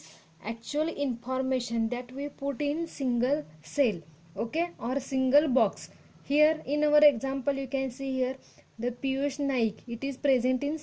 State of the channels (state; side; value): identical; both; correlation 1.00